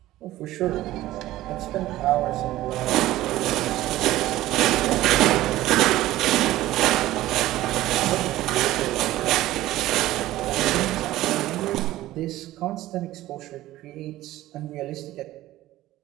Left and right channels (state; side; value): quieter; left; 15.7 dB